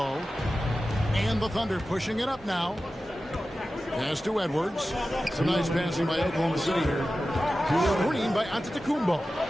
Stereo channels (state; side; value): normal; both; correlation 0.94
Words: And the Thunder pushing it up now. Pass to Edwards. Some nice passing by Oklahoma City here. Screen by Antetokounmpo.